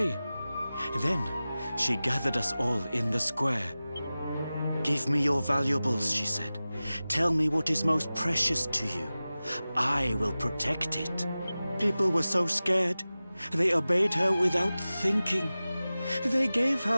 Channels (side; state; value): both; inverted; correlation -0.96